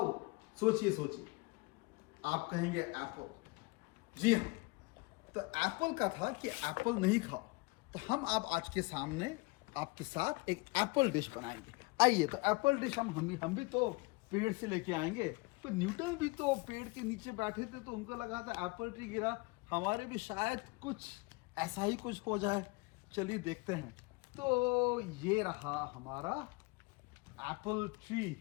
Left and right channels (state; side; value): quieter; right; 26.0 dB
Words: सोचिए सोचिए। आप कहेंगे एप्पल। जी हाँ, तो एप्पल का था कि एप्पल नहीं खाओ। तो हम आप आज के सामने आपके साथ एक एप्पल डिश बनाएंगे। आइए, तो एप्पल डिश हम भी तो पेड़ से लेके आएंगे। तो न्यूटन भी तो पेड़ के नीचे बैठे थे, तो उनको लगा था एप्पल ट्री गिरा, हमारे भी शायद कुछ ऐसा ही कुछ हो जाए। चलिए देखते हैं। तो ये रहा हमारा एप्पल ट्री।